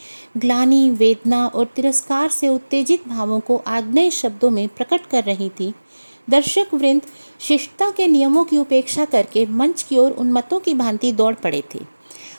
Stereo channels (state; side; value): inverted; both; correlation -1.00